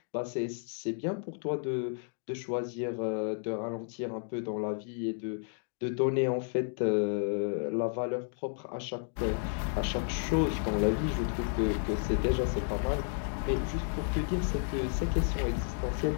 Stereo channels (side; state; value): right; silent; 56 dB below the other